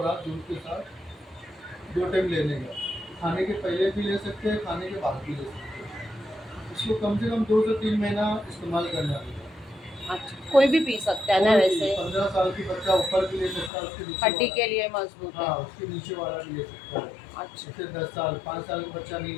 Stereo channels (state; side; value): drops out; right; at 13.7 s